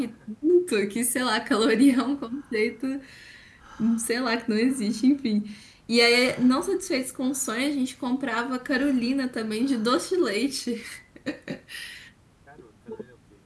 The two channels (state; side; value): identical; both; correlation 1.00